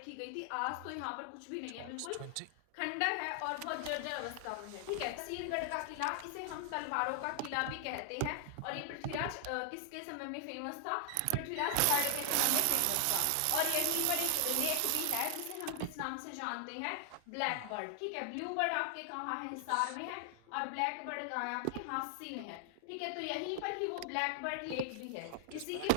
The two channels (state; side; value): different; both; correlation 0.00